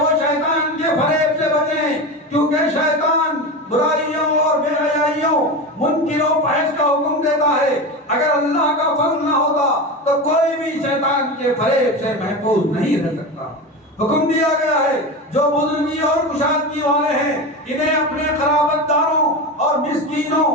شیطان کے فریب سے بچیں، کیونکہ شیطان برائیوں اور بے حیائیوں، منکر و فحش کا حکم دیتا ہے۔ اگر اللہ کا فضل نہ ہوتا تو کوئی بھی شیطان کے فریب سے محفوظ نہیں رہ سکتا۔ حکم دیا گیا ہے جو بزرگی اور کشادگی والے ہیں، انہیں اپنے قرابت داروں اور مسکینوں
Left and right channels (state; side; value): normal; both; correlation 0.23